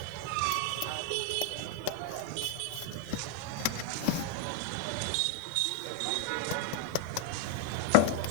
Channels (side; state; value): both; different; correlation 0.01